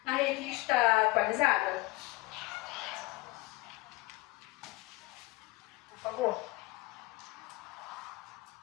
na revista atualizada? Por favor.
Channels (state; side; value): quieter; right; 21.6 dB